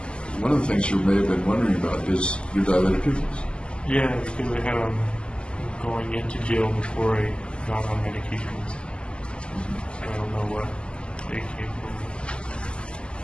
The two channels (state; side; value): late; right; 0.056 ms